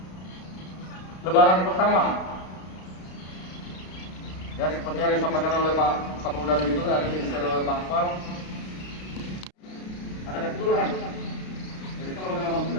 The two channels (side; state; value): right; late; 32 ms